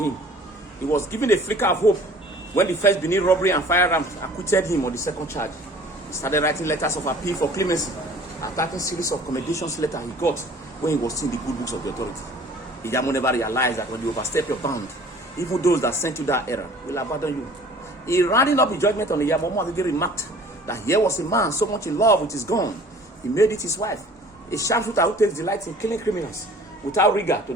him. He was given a flicker of hope when the first Benin robbery and firearms acquitted him on the second charge. He started writing letters of appeal for clemency, attacking series of commendations letters he got when he was seeing the good books of the authority. Iyamu never realized that when you overstep your bound, even those that sent you that error will abandon you. He rounding up his judgment on Iyamu, Omagege remarked that here was a man so much in love with his gun, he made it his wife. A sharpshooter who takes delight in killing criminals without rigor to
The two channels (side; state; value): both; normal; correlation 0.49